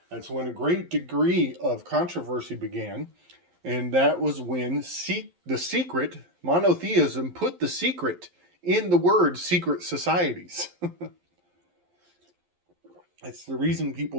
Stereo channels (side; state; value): left; late; 11 ms